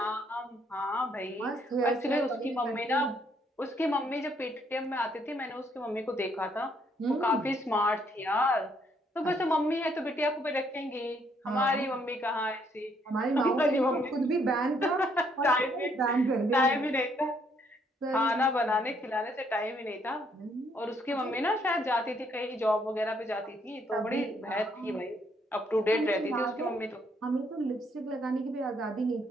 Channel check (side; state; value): both; normal; correlation 0.69